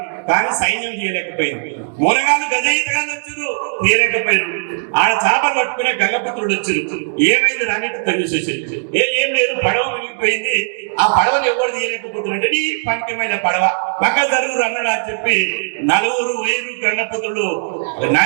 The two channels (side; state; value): left; silent; digital silence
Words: కానీ సైన్యం తీయలేకపోయింది. మునగాళ్ళు గజయితగాళ్ళు వచ్చారు, తీయలేకపోయింది. ఆడ చేపలు పట్టుకునే గంగపుత్రుడు వచ్చారు. ఏమైంది రానిట్టు తెలిసేసింది. ఏం లేదు, పడవ మునిగిపోయింది. ఆ పడవను ఎవరు తీయలేకపోతున్నట్టే నీ పంకిమైన పడవ పక్క జరువురు అన్నాడు అని చెప్పి 4 గంగపుత్రులు